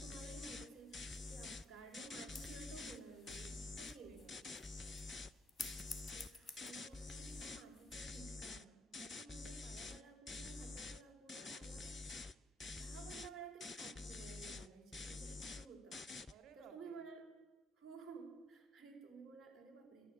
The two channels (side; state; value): both; normal; correlation 0.72